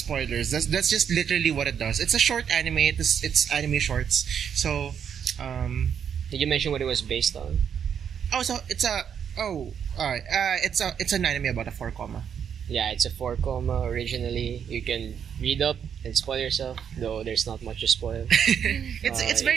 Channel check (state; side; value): quieter; left; 8.0 dB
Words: That's just literally what it does. It's a short anime. It's anime shorts. So, Did you mention what it was based on? it's an anime about a 4 comma. Yeah, it's a 4 comma originally. You can read up and spoil yourself, though there's not much to spoil. It's